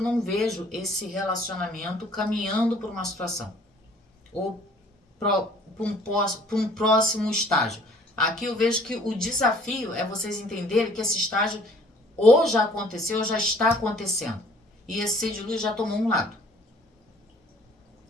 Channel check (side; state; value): both; normal; correlation 0.55